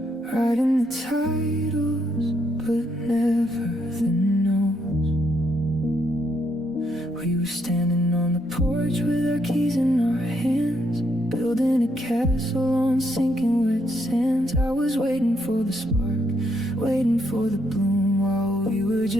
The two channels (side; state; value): both; normal; correlation 0.75